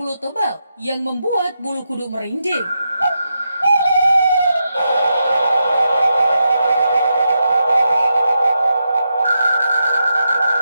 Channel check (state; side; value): inverted; both; correlation -0.86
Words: tebal yang membuat bulu kuduk merinding.